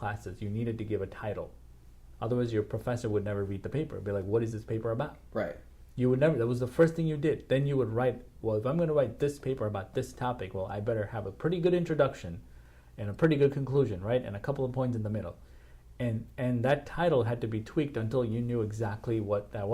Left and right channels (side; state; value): both; identical; correlation 1.00